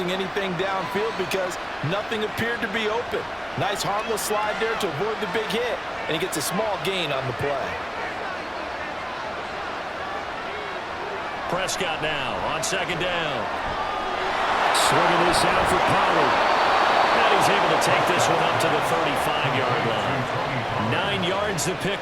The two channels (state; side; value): identical; both; correlation 1.00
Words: anything downfield because nothing appeared to be open. Nice harmless slide there to avoid the big hit, and he gets a small gain on the play. Prescott now on second down. Swinging this out for Pollard. And he's able to take this one up to the 35-yard line. 9 yards to